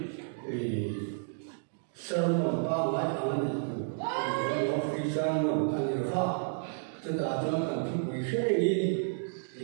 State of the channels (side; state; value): left; silent; digital silence